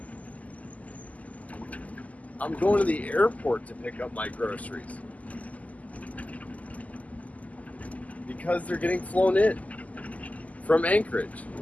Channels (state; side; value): late; right; 0.074 ms